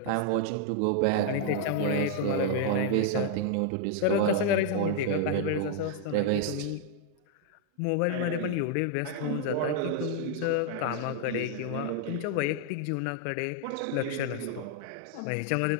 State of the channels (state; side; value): different; both; correlation 0.00